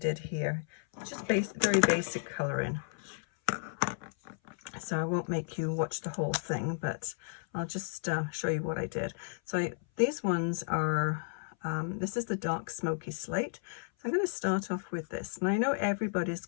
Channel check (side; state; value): right; silent; 56 dB below the other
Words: here. Just very basic colouring. So I won't make you watch the whole thing, but I'll just show you what I did. So these ones are, this is the dark smoky slate. So I'm going to start off with this. And I know everybody's